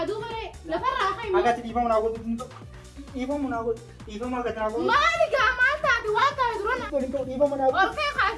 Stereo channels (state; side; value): identical; both; correlation 1.00